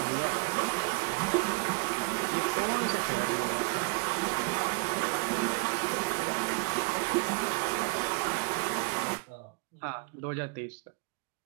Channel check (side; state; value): left; quieter; 29.1 dB